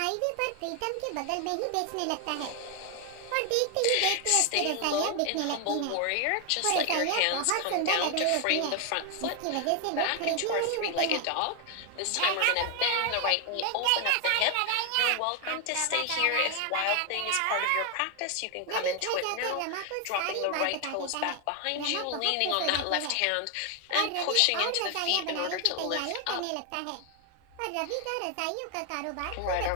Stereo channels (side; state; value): both; different; correlation 0.00